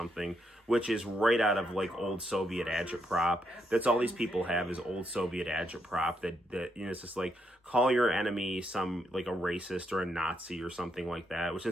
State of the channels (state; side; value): normal; both; correlation 0.79